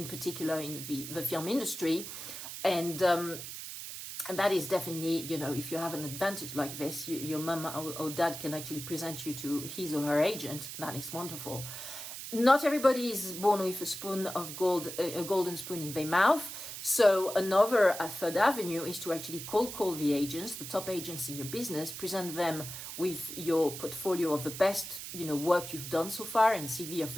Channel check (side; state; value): right; noise; hiss, 9 dB below the sound